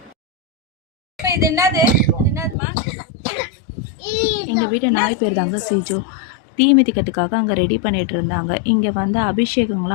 இது என்னது? எங்கள் வீட்டு நாய் பேர் தாங்க சிஜு. தீ மிதிக்கிறதுக்காக அங்கே ரெடி பண்ணிகிட்டு இருந்தாங்க. இங்கே வந்து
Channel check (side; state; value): right; drops out; at 2.6 s